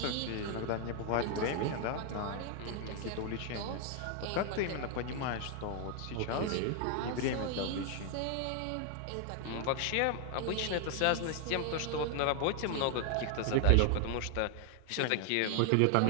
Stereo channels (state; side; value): different; both; correlation 0.00